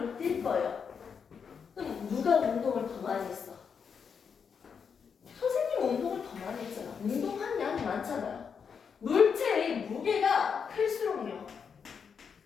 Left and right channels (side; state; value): right; quieter; 6.5 dB